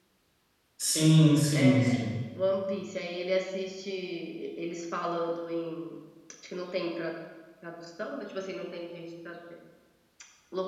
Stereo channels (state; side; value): identical; both; correlation 1.00